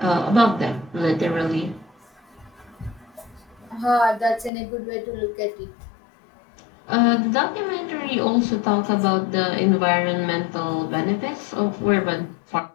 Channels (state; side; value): drops out; right; at 4.5 s